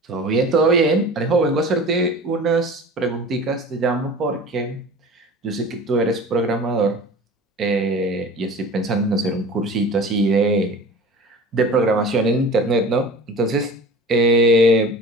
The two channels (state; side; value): normal; both; correlation 0.38